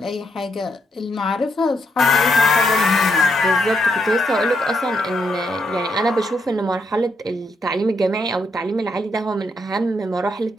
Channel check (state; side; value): normal; both; correlation 0.78